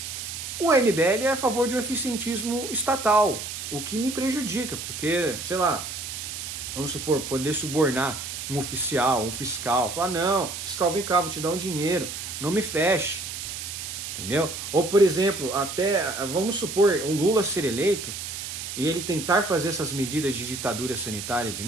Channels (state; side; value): noise; right; hiss, 7 dB below the sound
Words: O MBL é a favor de um eficientismo estatal, o que me prejudica, porque, sei lá, vamos supor, poder subornar um oficial, um fiscal, falar, não, fiscal, vem cá, vou te dar um dinheiro, não me feche, entendeu? Ou, por exemplo, até, vamos supor, o Lula ser eleito e ele tentar fazer essas medidas de ditadura sanitária de